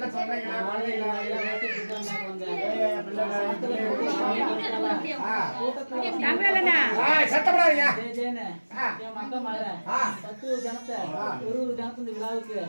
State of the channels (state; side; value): inverted; both; correlation -1.00